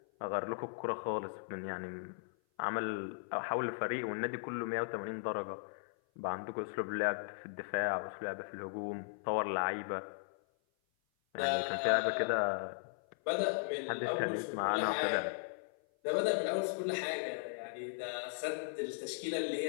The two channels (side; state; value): right; silent; 53 dB below the other